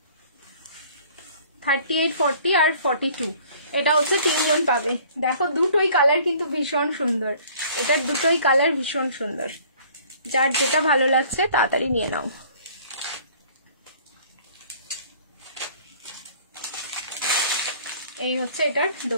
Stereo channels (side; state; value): both; inverted; correlation -0.53